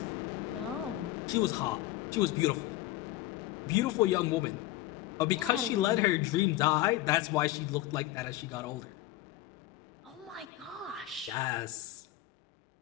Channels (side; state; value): right; quieter; 15.3 dB